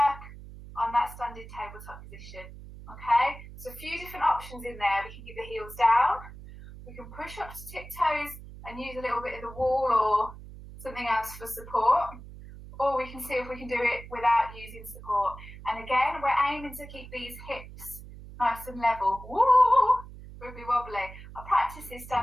on that standing tabletop position. Okay? So a few different options in there. We can keep the heels down. We can push up to tiptoes and use a little bit of the wall or something else for support. Or we can see if we can do it without using support. And again, we're aiming to keep these hips nice and level. Woo! Wibbly wobbly. I practice this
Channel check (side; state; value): right; noise; hum, 15 dB below the sound